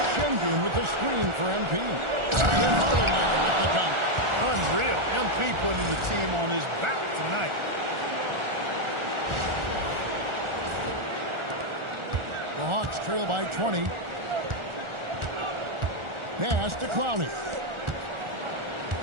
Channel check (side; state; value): left; late; 1.4 ms